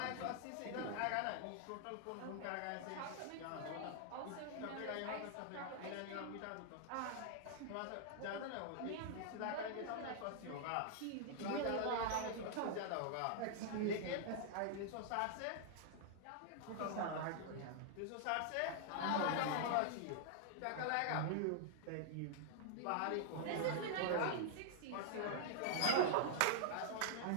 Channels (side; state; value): both; different; correlation -0.01